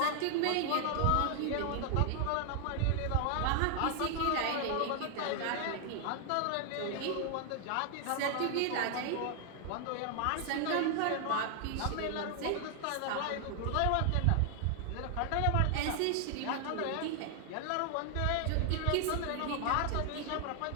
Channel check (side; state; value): both; different; correlation 0.00